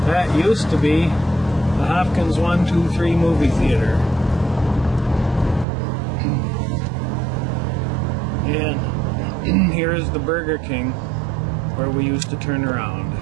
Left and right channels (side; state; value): left; drops out; at 5.7 s